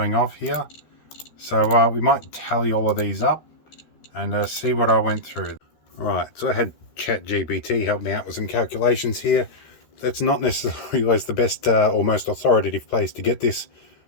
off here. So we might tally all of these up and see what I went through. Alright, so I had ChatGPT help me out with some calculations here. That's not necessarily always the best or most authoritative place to get this,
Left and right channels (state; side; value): late; right; 13 ms